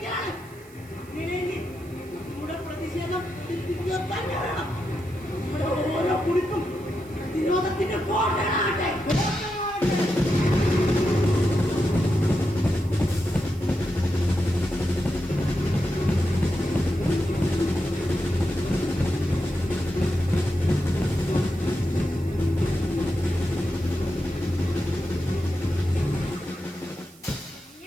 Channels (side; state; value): right; noise; hiss, 25 dB below the sound